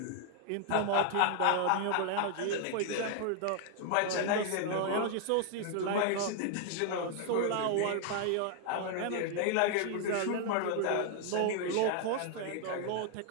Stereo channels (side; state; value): both; different; correlation 0.00